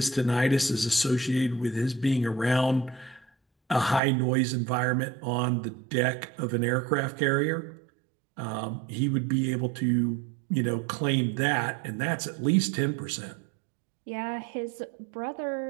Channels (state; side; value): drops out; left; at 4.0 s